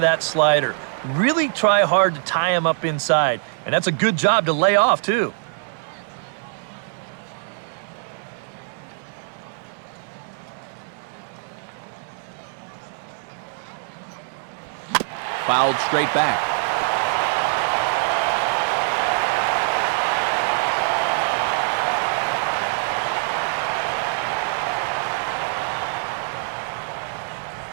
slider. Really try hard to tie him up inside, and that's a good job to lay off too. Fouled straight back.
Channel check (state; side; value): silent; left; 63 dB below the other